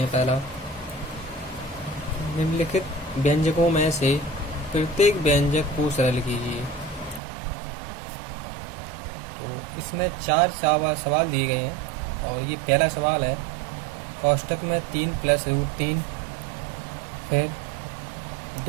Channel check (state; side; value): drops out; left; at 7.2 s